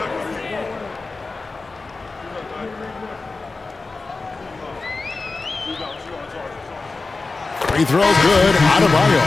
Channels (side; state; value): right; quieter; 3.8 dB